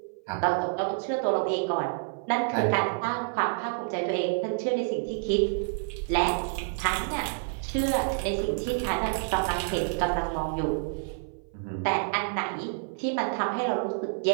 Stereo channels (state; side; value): silent; left; 56 dB below the other